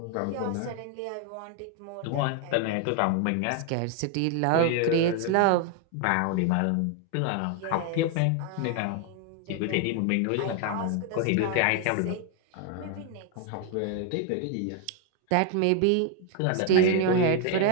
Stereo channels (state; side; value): different; both; correlation 0.01